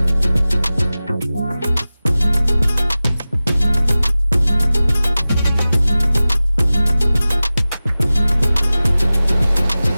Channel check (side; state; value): both; inverted; correlation -0.97